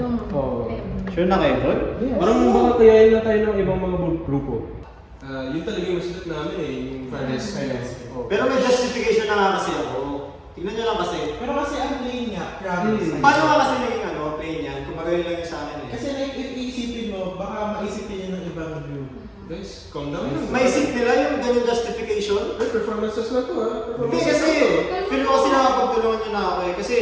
Oo. Sure na kayo doon? Yes. Parang baka kayain na tayo ng ibang mga grupo. Yun talaga yung masulat namin eh, yung fire rescue. Pero may justification na nga kasi ako. Tignan nyo lang kasi. Pero kasi ang plain nga, promise. Paano nga kasi naging plain yan? Kung magaling lang yun sa akin eh. Kasi like, if iisipin mo, baka maisipin yun ng ibang group. Guys, calm down lang. Maisip nila yung ganyung justification? Ay, performances na to ha. Hindi kasi, feel ko kasi nakapagtulungan nyo na ako eh. Kasi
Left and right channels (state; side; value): identical; both; correlation 1.00